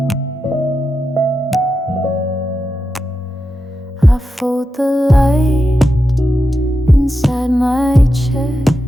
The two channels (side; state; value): both; normal; correlation 0.89